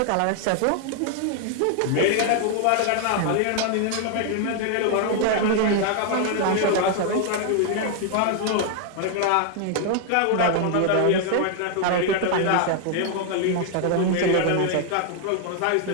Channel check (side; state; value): both; different; correlation 0.00